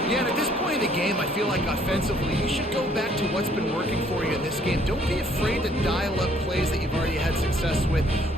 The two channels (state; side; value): normal; both; correlation 0.63